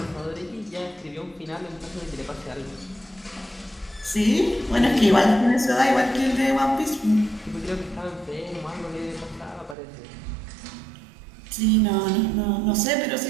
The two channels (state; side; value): drops out; left; at 9.8 s